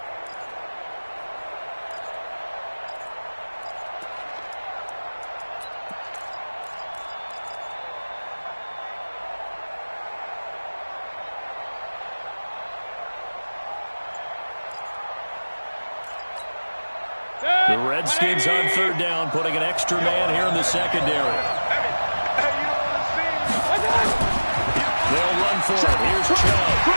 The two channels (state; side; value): inverted; both; correlation -1.00